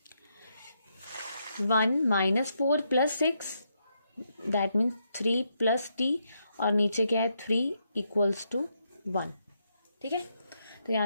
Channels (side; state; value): both; inverted; correlation -0.79